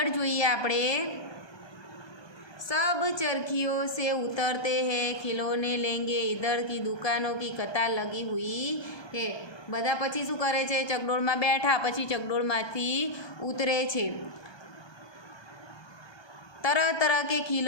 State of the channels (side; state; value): right; late; 1.2 ms